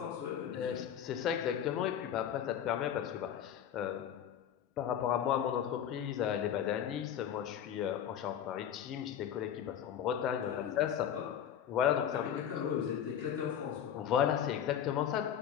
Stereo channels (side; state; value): right; quieter; 9.5 dB